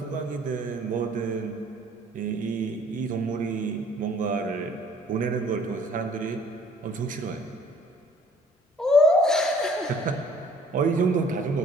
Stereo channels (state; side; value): normal; both; correlation 0.56